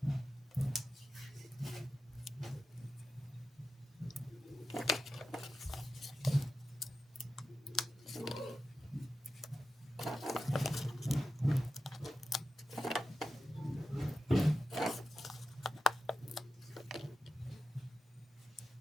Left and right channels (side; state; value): both; normal; correlation 0.91